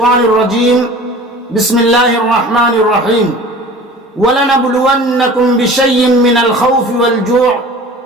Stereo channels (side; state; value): both; normal; correlation 0.42